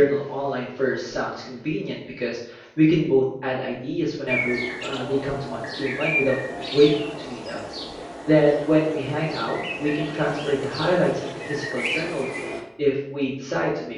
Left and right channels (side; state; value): both; identical; correlation 1.00